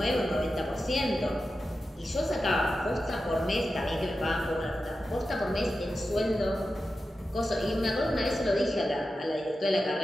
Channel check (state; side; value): normal; both; correlation 0.92